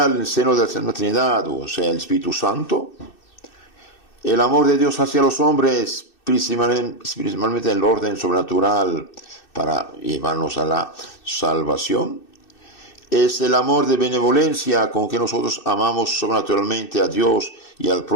en el seno de la Santa Trinidad, o sea, el Espíritu Santo. El amor de Dios hacia los hombres, principalmente en el orden sobrenatural para llevarnos a la salvación. Es el amor de benevolencia con que nosotros amamos sobrenaturalmente a Dios y al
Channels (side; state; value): right; late; 2.6 ms